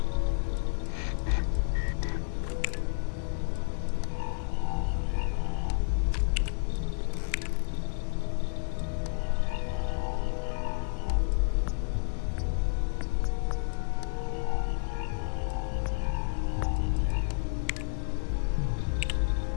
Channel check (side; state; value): right; silent; 58 dB below the other